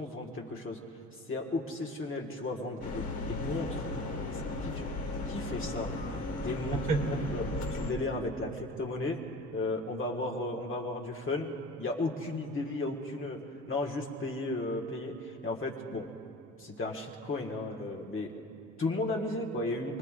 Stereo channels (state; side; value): normal; both; correlation 0.39